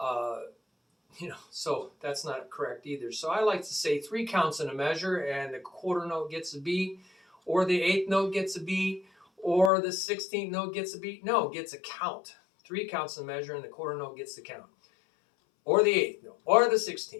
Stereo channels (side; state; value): right; drops out; at 9.7 s